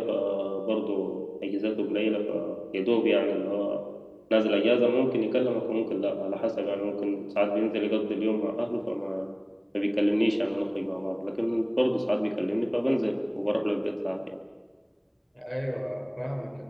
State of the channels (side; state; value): both; identical; correlation 1.00